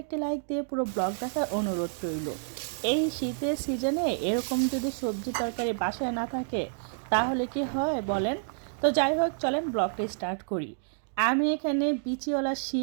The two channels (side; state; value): left; silent; digital silence